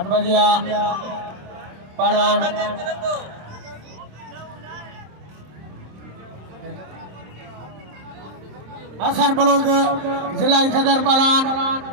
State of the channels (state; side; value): late; left; 26 ms